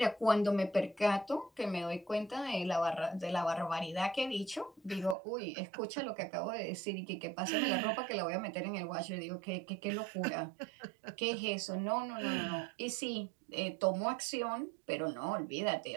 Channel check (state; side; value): drops out; left; at 5.2 s